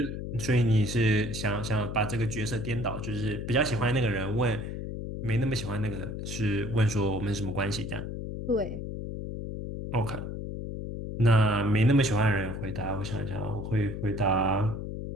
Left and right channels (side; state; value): left; noise; hum, 6 dB below the sound